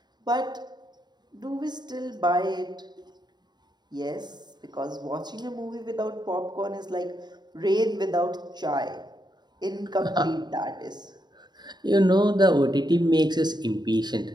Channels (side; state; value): left; late; 0.21 ms